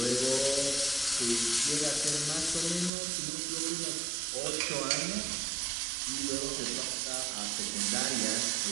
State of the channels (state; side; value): drops out; left; at 2.9 s